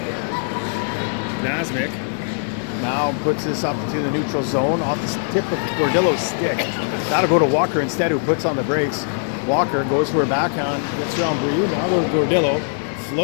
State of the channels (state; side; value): silent; right; digital silence